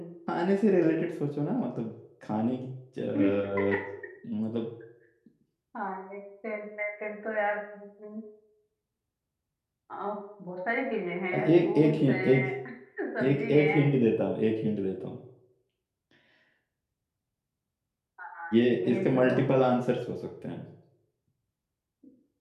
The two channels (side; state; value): both; identical; correlation 1.00